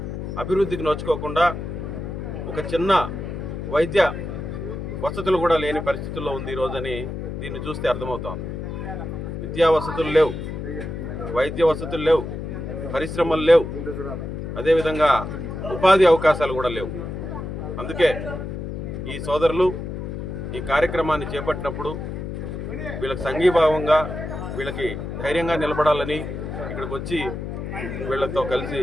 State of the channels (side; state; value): left; noise; hum, 6 dB below the sound